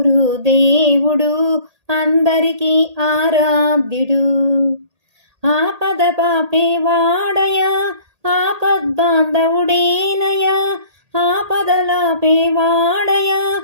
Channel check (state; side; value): late; left; 1.8 ms